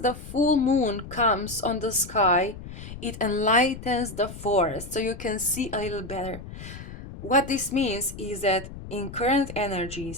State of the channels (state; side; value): noise; left; rumble, 12 dB below the sound